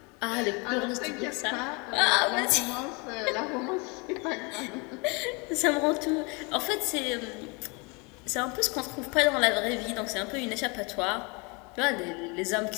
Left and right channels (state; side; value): quieter; right; 29.9 dB